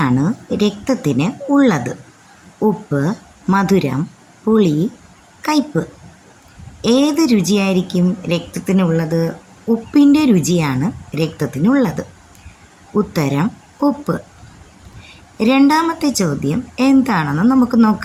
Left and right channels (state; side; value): identical; both; correlation 1.00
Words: രക്തത്തിന് ഉള്ളത്? ഉപ്പ്, മധുരം, പുളി, കയ്പ്പ്. ഏത് രുചിയായിരിക്കും രക്തത്തിനുള്ളത്? ഉപ്പിൻ്റെ രുചിയാണ് രക്തത്തിനുള്ളത്. ഉത്തരം ഉപ്പ്. രണ്ടാമത്തെ ചോദ്യം എന്താണെന്ന് നമുക്ക്